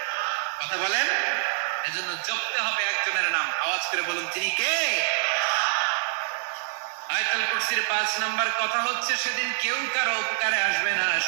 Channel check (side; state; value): left; silent; digital silence